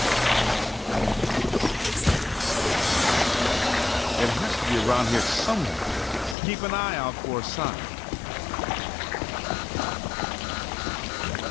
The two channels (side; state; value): right; drops out; at 6.4 s